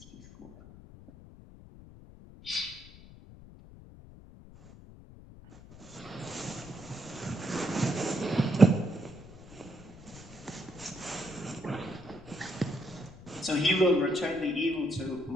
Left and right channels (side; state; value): left; noise; rumble, 19 dB below the sound